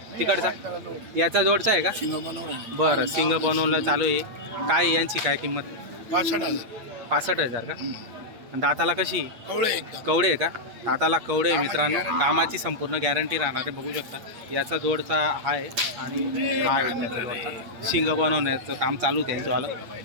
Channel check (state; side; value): late; left; 8.6 ms